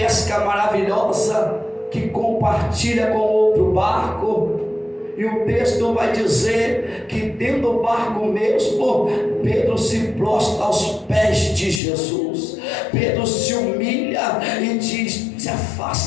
maravilhosa, que compartilha com outro barco. E o texto vai dizer que dentro do barco mesmo, Pedro se prostra aos pés de Jesus. Pedro se humilha e diz: se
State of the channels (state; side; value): drops out; right; at 11.8 s